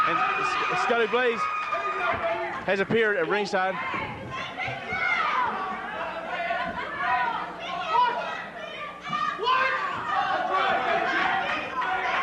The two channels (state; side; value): identical; both; correlation 1.00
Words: And Scotty Blaze has appeared at ringside.